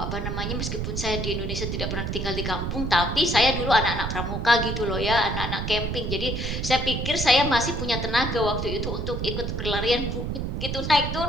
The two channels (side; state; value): right; noise; rumble, 3 dB below the sound